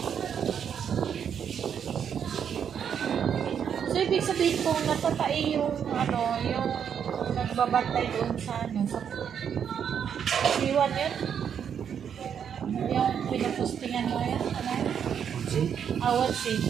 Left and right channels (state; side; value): quieter; left; 8.0 dB